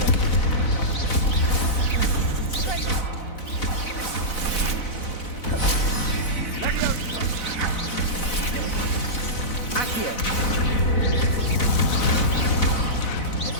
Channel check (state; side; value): late; right; 4.0 ms